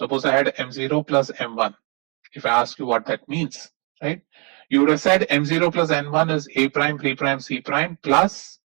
I had M0 plus M1. If I ask you what that means, right? You would have said M0 plus N1 is A prime, B prime, C prime plus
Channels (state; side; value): quieter; left; 34.0 dB